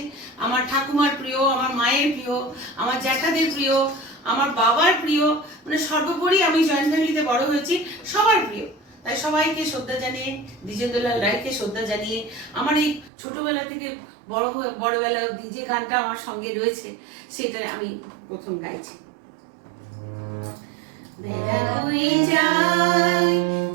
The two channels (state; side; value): drops out; left; at 13.1 s